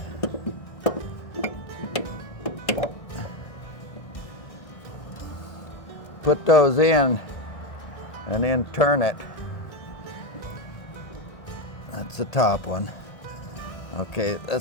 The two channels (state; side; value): late; right; 1.8 ms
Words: put those in and then turn it. That's the top one. Okay,